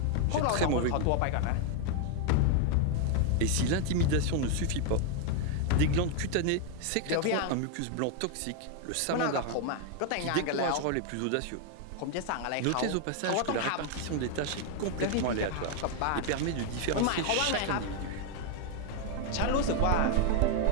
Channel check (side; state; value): both; different; correlation 0.00